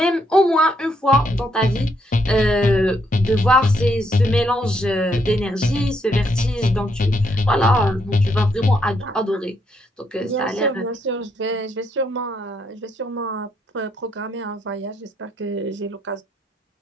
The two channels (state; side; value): normal; both; correlation 0.75